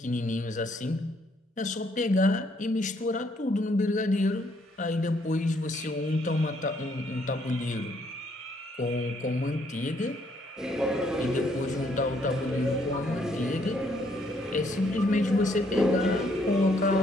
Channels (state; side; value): normal; both; correlation 0.69